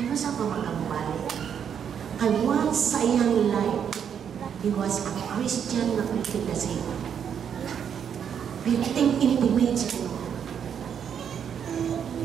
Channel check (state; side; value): quieter; left; 8.1 dB